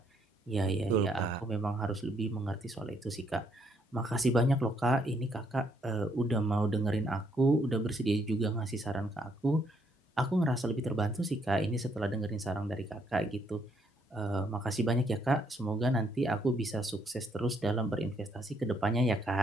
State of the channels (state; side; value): normal; both; correlation 0.71